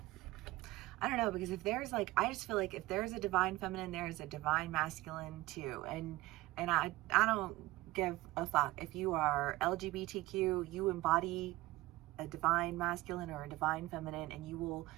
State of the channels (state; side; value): quieter; left; 18.6 dB